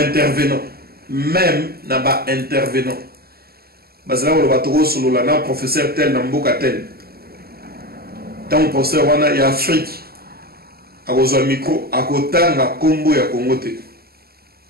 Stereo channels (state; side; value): late; left; 0.45 ms